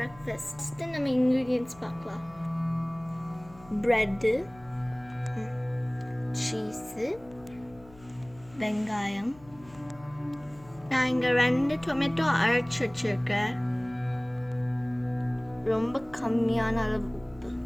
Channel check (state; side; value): noise; left; hum, 23 dB below the sound